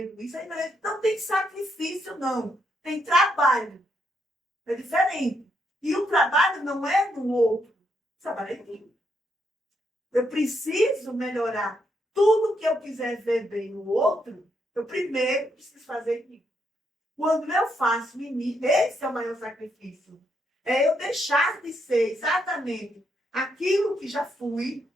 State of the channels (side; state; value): both; normal; correlation 0.77